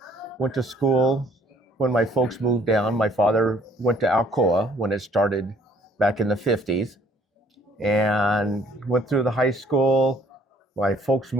went to school when my folks moved down. My father went to Alcoa when it started back in the 50s, and went through the high school. My folks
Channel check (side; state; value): both; normal; correlation 0.60